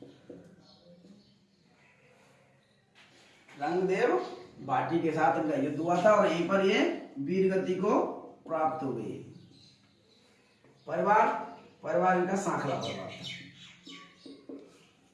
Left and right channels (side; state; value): both; identical; correlation 1.00